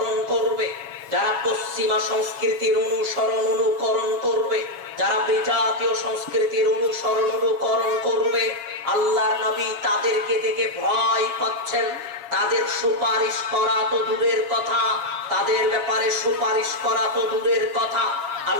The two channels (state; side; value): late; left; 7.4 ms